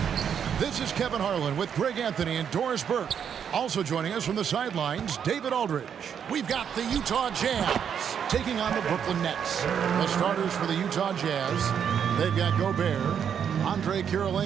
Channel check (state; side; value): quieter; left; 8.0 dB